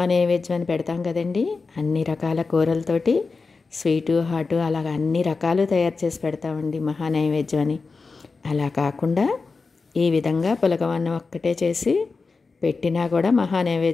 అని పెడతాం కదండి. అన్ని రకాల కూరలతోటి స్వీటు హాటు అలాగ అన్ని రకాలు తయారు చేసి పెడతామండి మహానైవేద్యం అని. అలా కాకుండా ఈ విధంగా పులగవన్నం ఒక్కటే చేసి పెట్టినా కూడా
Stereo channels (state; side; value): quieter; right; 4.3 dB